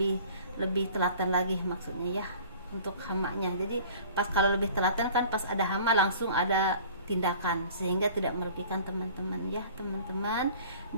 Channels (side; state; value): both; inverted; correlation -0.47